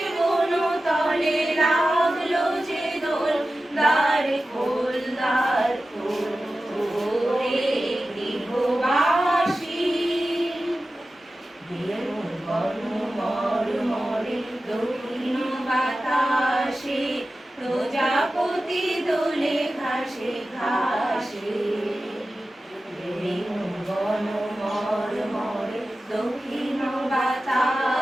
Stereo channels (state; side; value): normal; both; correlation 0.94